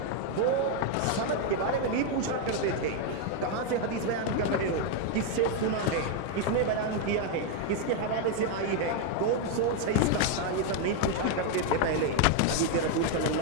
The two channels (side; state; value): both; different; correlation 0.01